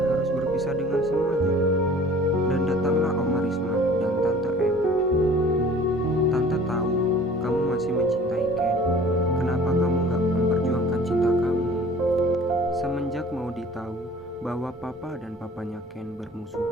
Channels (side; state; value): both; normal; correlation 0.48